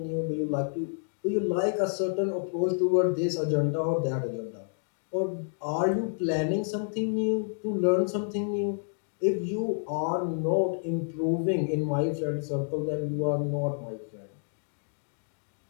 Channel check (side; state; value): right; silent; digital silence